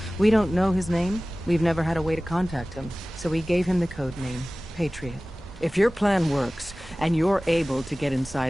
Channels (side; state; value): both; normal; correlation 0.98